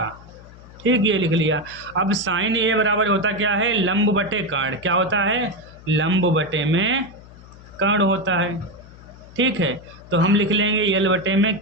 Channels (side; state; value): left; noise; hum, 20 dB below the sound